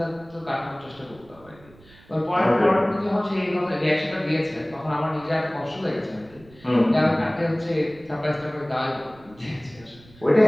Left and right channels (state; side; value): noise; right; rumble, 25 dB below the sound